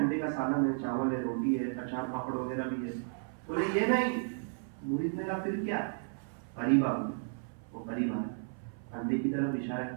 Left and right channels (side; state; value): left; silent; 55 dB below the other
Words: کا سالن ہے, چاول ہے, روٹی ہے, اچار پاپڑ وغیرہ بھی ہے. بولے یہ نہیں. مرید نے کہا پھر کیا؟ قریب آ گیا. وہ قریب آیا, انڈے کی طرف اشارہ